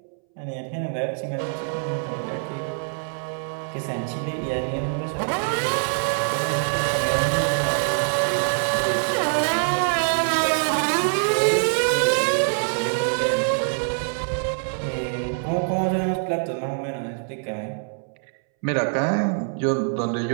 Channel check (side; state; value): left; silent; 62 dB below the other